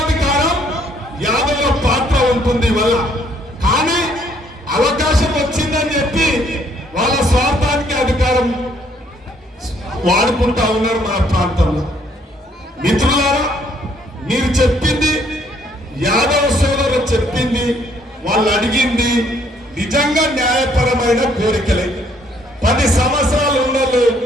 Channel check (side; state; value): both; normal; correlation 0.66